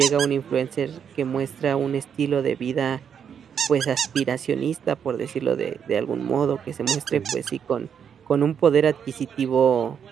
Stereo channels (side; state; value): left; quieter; 7.7 dB